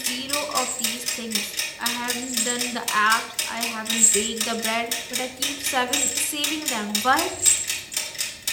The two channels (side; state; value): both; identical; correlation 1.00